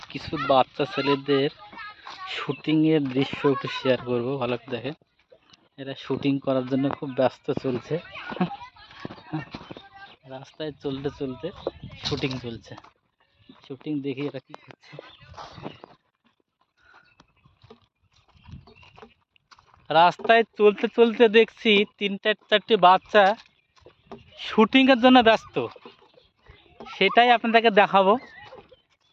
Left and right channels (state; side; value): identical; both; correlation 1.00